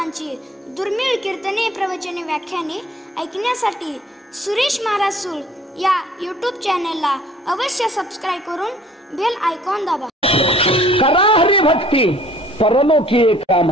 दुर्मिळ कीर्तने, प्रवचने, व्याख्याने ऐकण्यासाठी सुरेश महाराज सूळ या यूट्यूब चॅनलला अवश्य सबस्क्राईब करून बेल आयकॉन दाबा. करा हरी भक्ती परलोकी एक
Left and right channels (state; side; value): normal; both; correlation 0.54